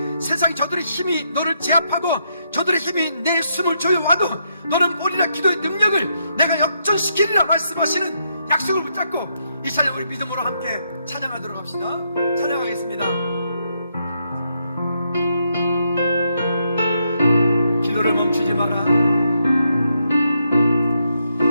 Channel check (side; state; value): both; inverted; correlation -0.79